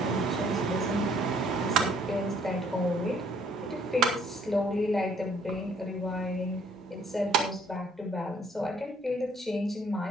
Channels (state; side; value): normal; both; correlation 0.62